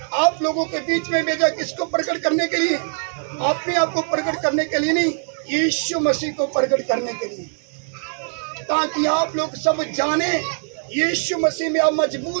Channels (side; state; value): left; silent; 64 dB below the other